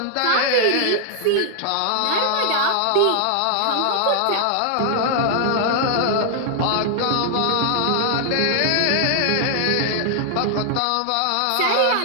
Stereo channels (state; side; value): different; both; correlation 0.00